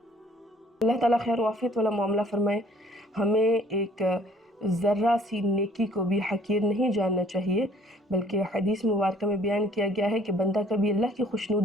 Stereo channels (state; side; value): normal; both; correlation 0.58